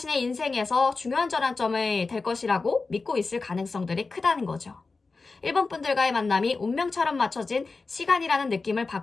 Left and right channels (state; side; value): quieter; right; 4.0 dB